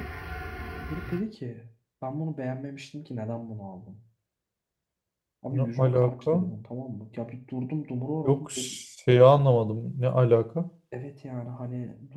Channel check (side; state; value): both; identical; correlation 1.00